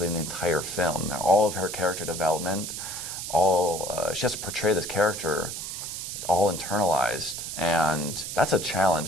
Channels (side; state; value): right; noise; hiss, 6 dB below the sound